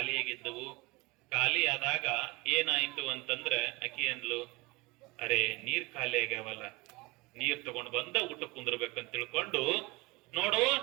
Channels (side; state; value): left; quieter; 23.0 dB